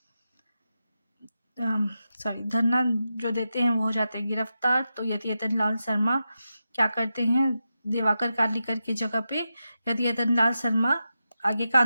धरना जो देते हैं वो हो जाते हैं गिरफ्तार। तो यतियतन लाल शर्मा क्या करते हैं, दिवाकर कार्लिकर की जगह पे यतियतन लाल शर्मा आगे का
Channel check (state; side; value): inverted; both; correlation -0.90